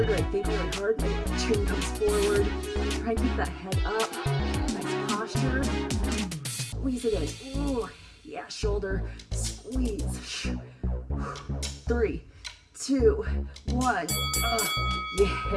or I think really hard, my chin comes forward. Try and keep that head up. Nice posture. Squeeze it in. Ooh, yeah, shoulder. Squeeze. 3, 2, 1.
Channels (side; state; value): both; identical; correlation 1.00